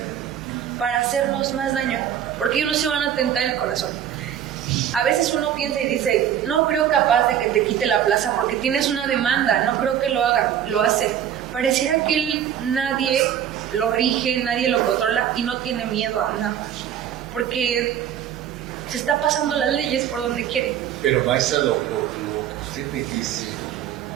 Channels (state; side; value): quieter; left; 9.9 dB